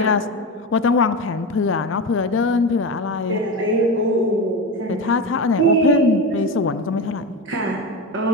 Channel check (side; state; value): both; normal; correlation 0.20